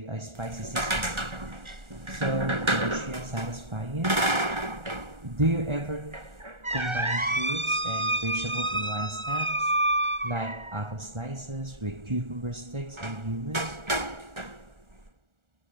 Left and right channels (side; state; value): left; late; 1.4 ms